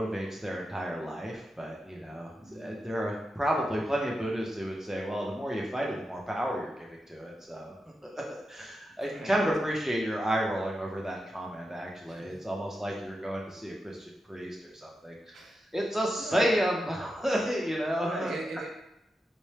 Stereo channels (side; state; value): both; normal; correlation 0.88